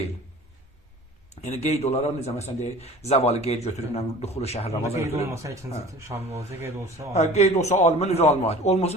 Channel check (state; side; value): normal; both; correlation 0.43